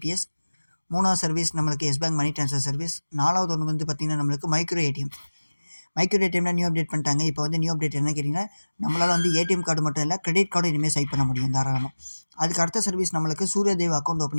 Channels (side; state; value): both; inverted; correlation -1.00